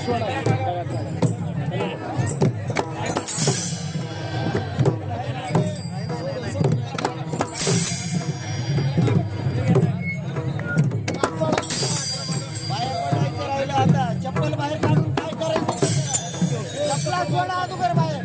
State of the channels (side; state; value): both; identical; correlation 1.00